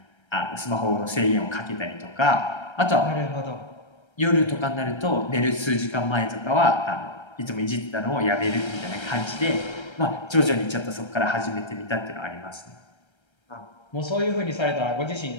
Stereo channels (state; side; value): late; right; 1.3 ms